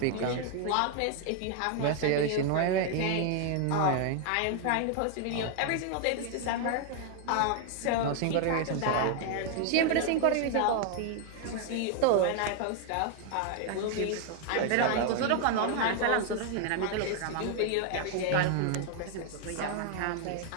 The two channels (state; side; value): different; both; correlation 0.00